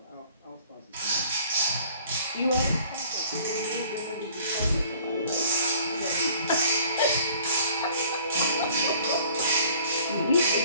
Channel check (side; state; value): both; inverted; correlation -0.54